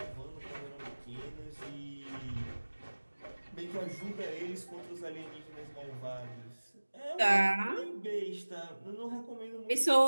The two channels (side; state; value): both; inverted; correlation -1.00